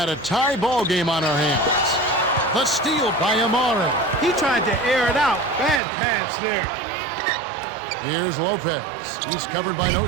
a tie ball game on our hands. The steal by Amari. He tried to air it out. Bad pass there. Here's Lopez. He's covered by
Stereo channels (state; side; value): drops out; left; at 5.8 s